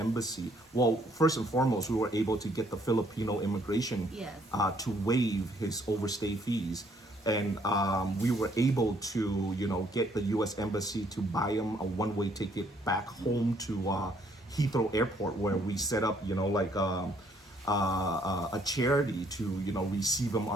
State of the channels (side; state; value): both; normal; correlation 0.66